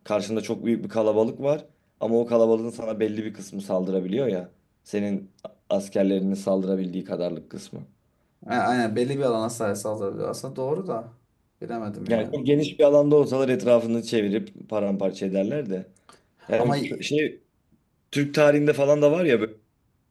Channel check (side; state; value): both; identical; correlation 1.00